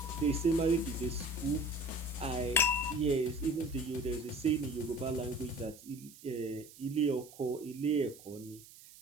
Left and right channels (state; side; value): noise; right; hiss, 20 dB below the sound